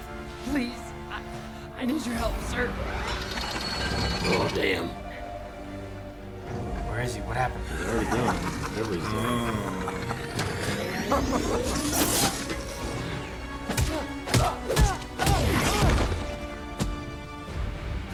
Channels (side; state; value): both; identical; correlation 1.00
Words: Please, I need your help, sir. Oh, damn. Where is he? What happened? He's already gone. Whatever he's doing.